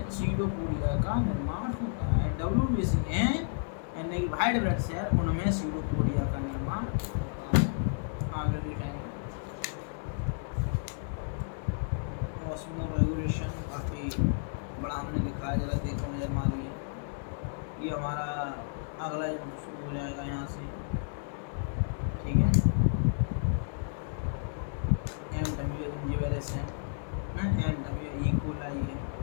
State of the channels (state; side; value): silent; right; digital silence